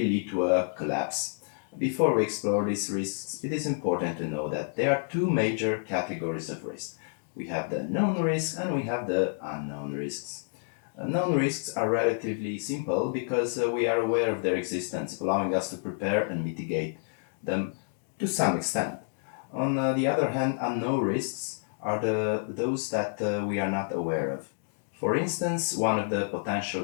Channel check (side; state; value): right; silent; digital silence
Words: lead to a collapse. Before we explore these risks, it is important to know that there are two major categories of risk. We have the known risks and we have the unknown risks. Known risks are relatively simple because we are aware of their existence, allowing us to prepare and mitigate them to some extent. On the other hand, unknown risks are those that we are not aware of. For instance, one of the